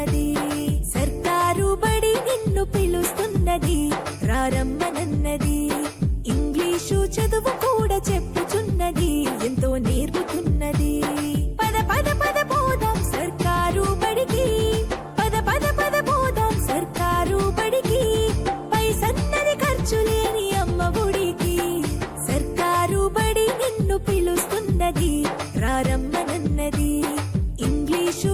సర్కారు బడి నిన్ను పిలుస్తున్నది, రారమ్మనన్నది. ఇంగ్లీషు చదువు కూడా చెప్పుచున్నది, ఎంతో నేర్పుతున్నది. పద పద పద పోదాం సర్కారు బడికి, పద పద పద పోదాం సర్కారు బడికి. పైసన్నది ఖర్చు లేని అమ్మ ఒడికి. సర్కారు బడి నిన్ను పిలుస్తున్నది, రారమ్మనన్నది. ఇంగ్లీషు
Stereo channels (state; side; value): identical; both; correlation 1.00